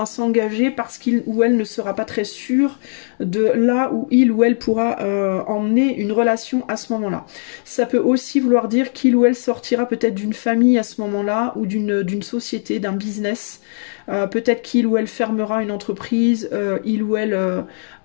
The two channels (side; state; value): right; silent; digital silence